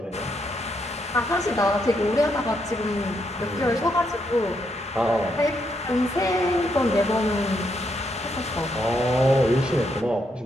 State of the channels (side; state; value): both; normal; correlation 0.77